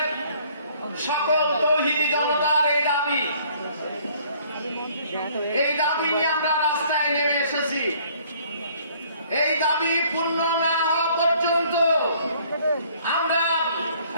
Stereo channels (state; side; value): inverted; both; correlation -0.59